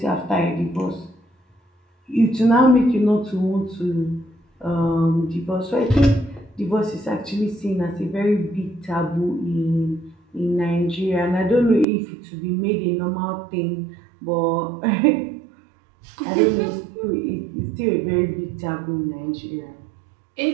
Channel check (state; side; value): drops out; left; at 11.9 s